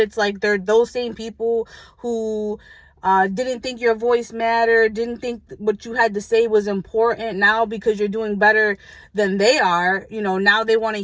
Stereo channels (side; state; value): both; identical; correlation 1.00